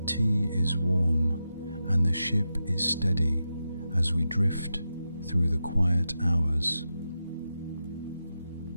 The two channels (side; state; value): both; inverted; correlation -0.90